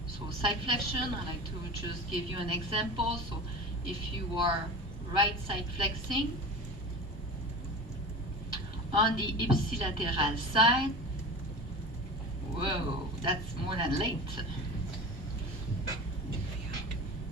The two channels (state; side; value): normal; both; correlation 0.33